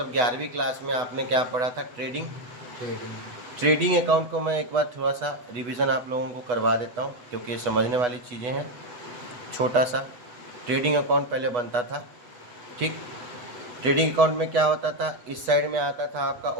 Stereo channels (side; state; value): left; late; 8.1 ms